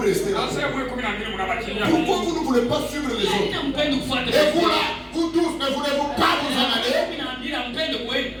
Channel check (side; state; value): both; identical; correlation 1.00